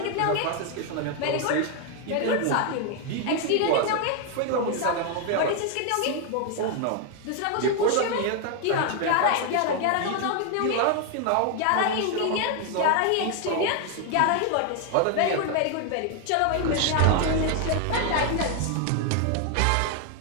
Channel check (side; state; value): both; different; correlation 0.01